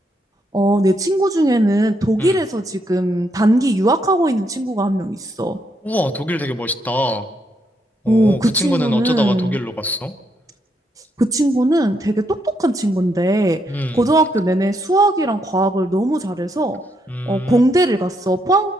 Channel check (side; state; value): both; normal; correlation 0.77